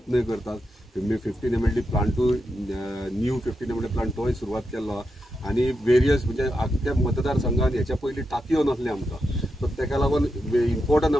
करतात। 15 mld plant to new 15 mld plant तोय सुरवात केल्लो आनी वेरियस म्हणजे अख्ख्या मतदारसंघान हेच्या पयलीं टाकयो नासले आमकां, सो तेका लागून इम्पॉर्टंट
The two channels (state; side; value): normal; both; correlation 0.87